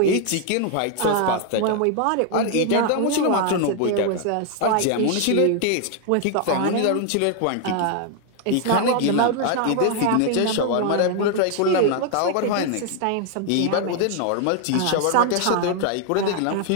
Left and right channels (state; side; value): different; both; correlation 0.00